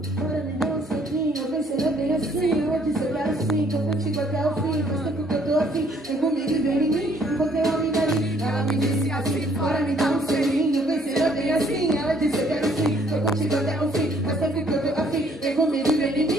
me dar um selinho, eu pensei bem assim. Eu disse eu quero sim, tô contigo até o fim. Faz tempo que eu tô assim, vem comigo e vem em mim. Encontrei uma amiga ali, ela me disse assim: bora me dar um selinho, eu pensei bem assim. Ela disse eu quero sim, tô contigo até o fim. Faz tempo que eu tô afim, vem comigo e vem em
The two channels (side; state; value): both; normal; correlation 0.63